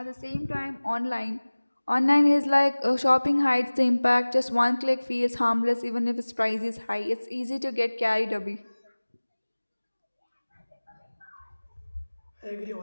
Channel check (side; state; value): both; inverted; correlation -1.00